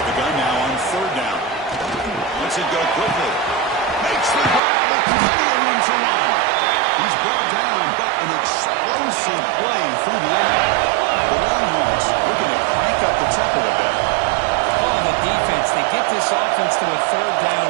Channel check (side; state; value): left; drops out; at 4.6 s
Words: the gun now on 3rd down. Lets it go quickly. Makes the grab with plenty of room to run. He's brought down, but an explosive play through the air. The Longhorns looking to crank up the tempo a bit. Defense, they get this offense to a 3rd down